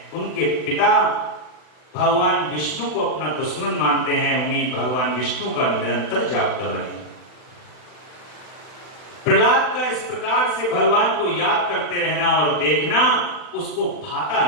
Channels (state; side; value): late; right; 40 ms